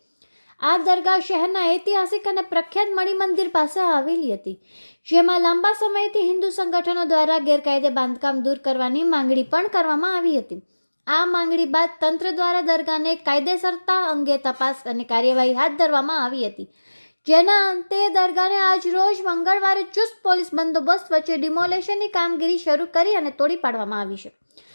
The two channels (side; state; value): both; inverted; correlation -1.00